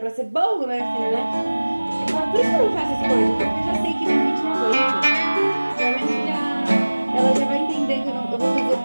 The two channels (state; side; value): inverted; both; correlation -1.00